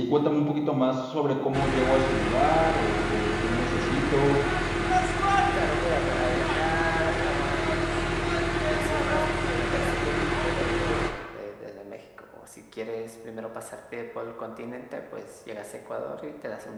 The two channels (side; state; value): both; identical; correlation 1.00